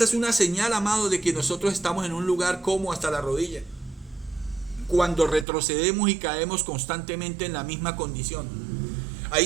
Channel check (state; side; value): drops out; left; at 5.5 s